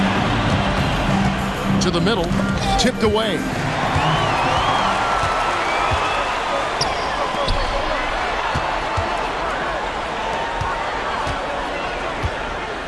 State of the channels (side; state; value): both; identical; correlation 1.00